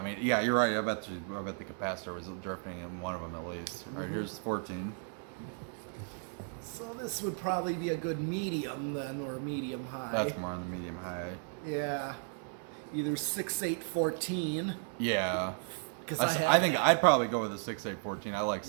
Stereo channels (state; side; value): silent; left; 55 dB below the other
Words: mean, yeah, you're right. I bet the capacitor was drifting in one of them at least. All right, here's 14. So this would probably be a good medium then, or medium high. That's more on the medium high. Yeah. Either 6, 8, 14. Yeah. Because I think I'd probably go with a 6, 8, 14. I like